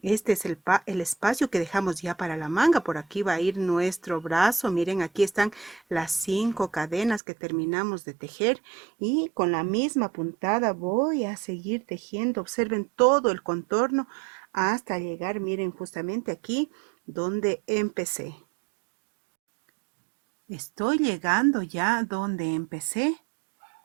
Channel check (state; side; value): drops out; left; at 7.2 s